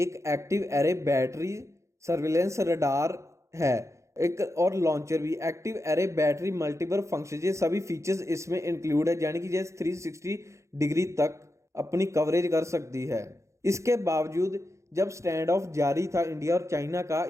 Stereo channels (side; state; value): left; late; 0.14 ms